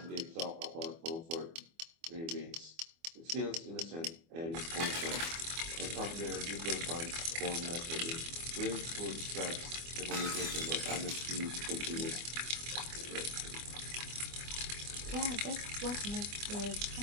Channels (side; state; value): left; late; 24 ms